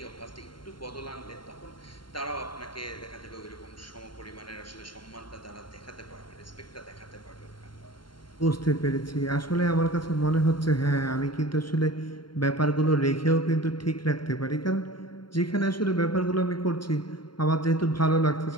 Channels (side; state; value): right; late; 0.72 ms